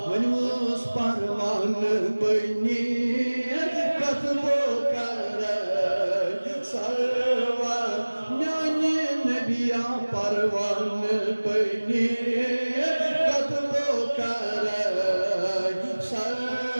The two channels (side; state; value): both; inverted; correlation -1.00